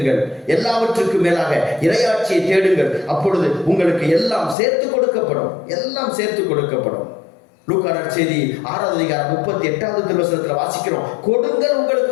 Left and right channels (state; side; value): drops out; right; at 4.5 s